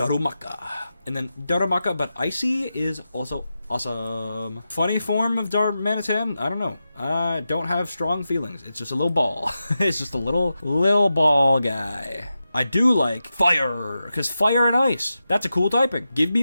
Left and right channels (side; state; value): both; inverted; correlation -0.91